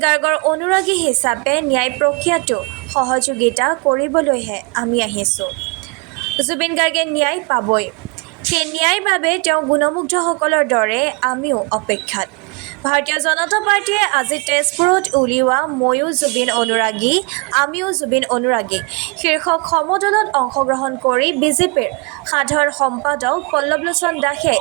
গাৰ্গৰ অনুৰাগী হিচাপে ন্যায় প্ৰক্ৰিয়াটো সহযোগিতা কৰিবলৈহে আমি আহিছোঁ। জুবিন গাৰ্গে ন্যায় পাবই। সেই ন্যায়ৰ বাবে তেওঁ গুণমুগ্ধসকলৰ দৰে আমিও অপেক্ষাত। ভাৰতীয় জনতা পাৰ্টীয়ে আজি তেজপুৰত উলিওৱা ময়ো জুবিন অনুৰাগী, আমিও জুবিন অনুৰাগী শীৰ্ষক সমদলত অংশগ্ৰহণ কৰি বিজেপিৰ সাধাৰণ সম্পাদক পল্লৱলোচন দাসে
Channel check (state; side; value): quieter; left; 31.1 dB